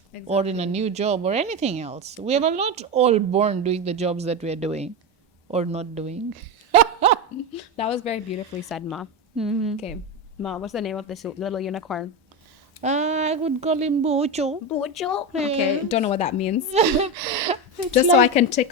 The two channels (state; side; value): normal; both; correlation 0.16